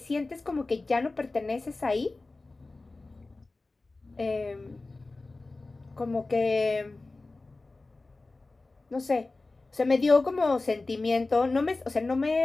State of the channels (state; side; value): quieter; right; 3.3 dB